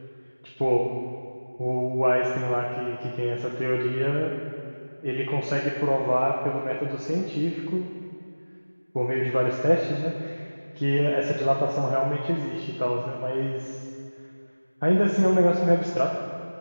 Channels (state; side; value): inverted; both; correlation -1.00